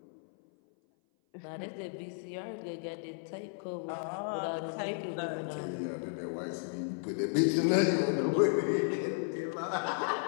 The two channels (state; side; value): silent; right; 55 dB below the other